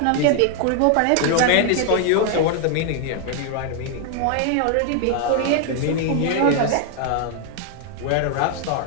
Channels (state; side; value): different; both; correlation 0.00